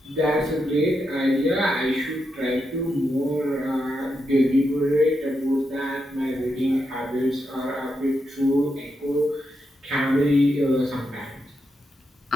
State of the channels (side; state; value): both; normal; correlation 0.84